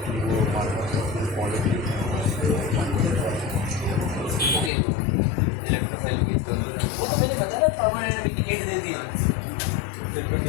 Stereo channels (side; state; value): right; drops out; at 4.7 s